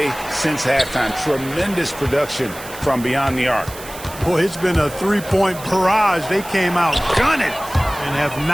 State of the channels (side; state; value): right; noise; hiss, 15 dB below the sound